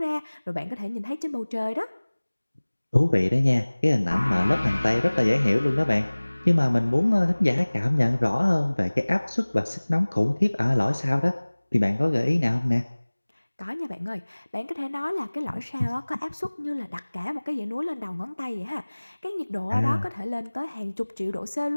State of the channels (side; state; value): both; inverted; correlation -1.00